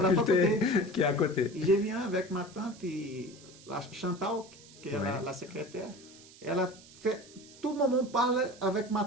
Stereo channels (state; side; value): noise; right; hiss, 21 dB below the sound